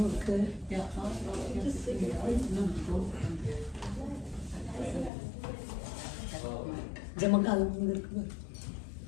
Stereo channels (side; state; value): right; drops out; at 5.1 s